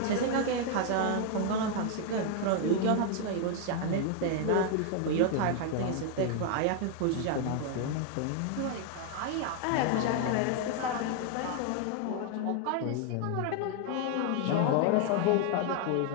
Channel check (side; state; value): both; different; correlation 0.00